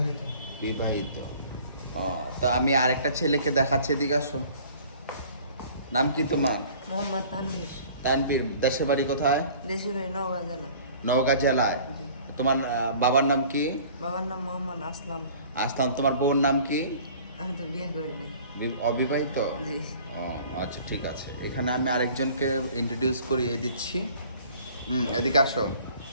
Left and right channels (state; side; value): inverted; both; correlation -0.50